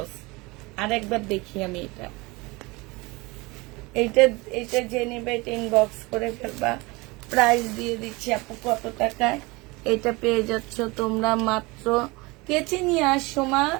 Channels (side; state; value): left; quieter; 24.3 dB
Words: আর একবার দেখি আমি এটা, এইটা এইটা যে নেবে এটা ইনবক্স করে ফেলবা। প্রাইস দিয়ে দিচ্ছি আপু কত টাকায়। এটা পেয়ে যাচ্ছ তোমরা মাত্র, কেচে নিয়ে আসো মা।